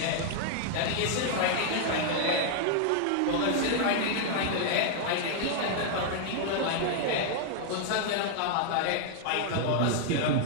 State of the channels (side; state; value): both; different; correlation -0.01